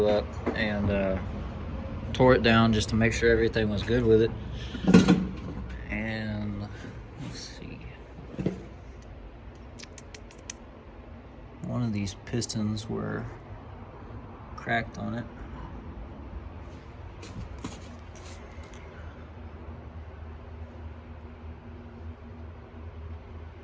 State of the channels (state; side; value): identical; both; correlation 1.00